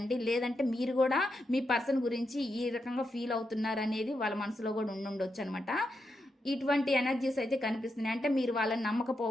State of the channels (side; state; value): both; normal; correlation 0.85